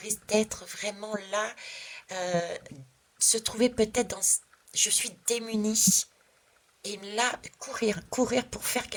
d'être vraiment là, se trouver peut-être dans... Je suis démunie. Et là, courir pour faire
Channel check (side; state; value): both; identical; correlation 1.00